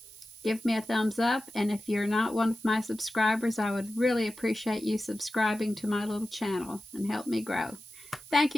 give me a thumbs up, and if you're not one of my subscribers, I would really appreciate you subscribing to my little channel and help me grow. Thank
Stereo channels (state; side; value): noise; right; hiss, 19 dB below the sound